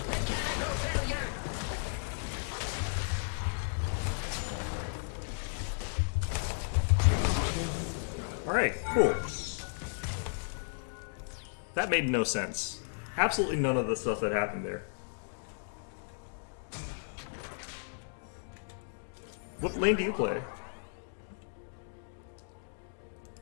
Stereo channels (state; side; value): silent; right; digital silence